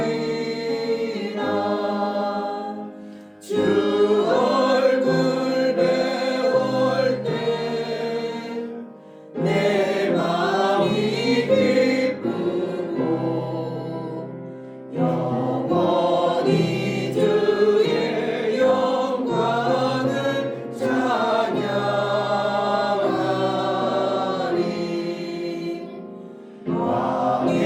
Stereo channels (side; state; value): both; identical; correlation 1.00